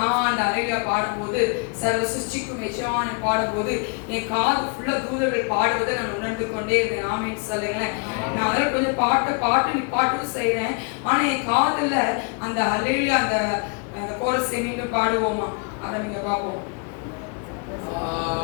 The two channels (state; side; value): quieter; right; 35.2 dB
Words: அந்த ஹல்லேலூயா பாடும்போது, சர்வ சிருஷ்டிக்கும் எஜமானனை பாடும்போது என் காது ஃபுல்லா தூதர்கள் பாடுவதை நான் உணர்ந்து கொண்டே இருந்தேன். ஆமென் சொல்லுங்களேன். நான் அதில் கொஞ்சம் பாட்டு செய்கிறேன். ஆனால் என் காதுல அந்த ஹல்லேலூயா அந்த கோரஸை மீண்டும் பாடுவோமா? அதை நீங்க பார்ப்போம்.